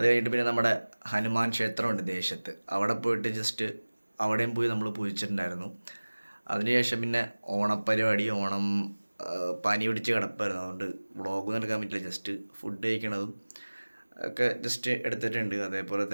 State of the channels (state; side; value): inverted; both; correlation -1.00